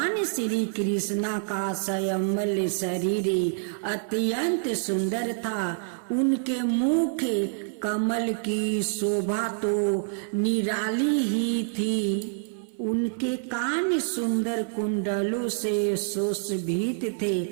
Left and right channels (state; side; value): silent; left; 57 dB below the other